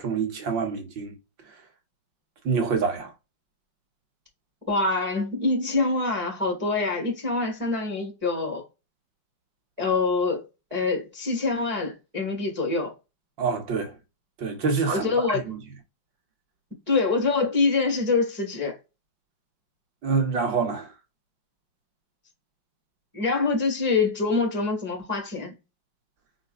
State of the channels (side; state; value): left; late; 5.7 ms